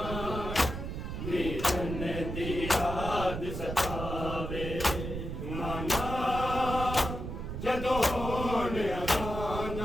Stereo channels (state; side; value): noise; right; rumble, 5 dB below the sound